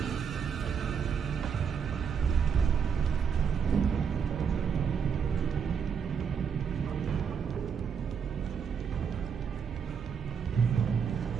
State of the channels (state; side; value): quieter; left; 6.8 dB